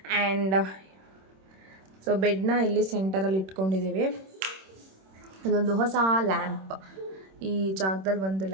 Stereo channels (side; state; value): left; late; 26 ms